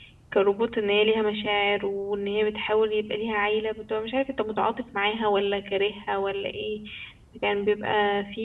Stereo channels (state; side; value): identical; both; correlation 1.00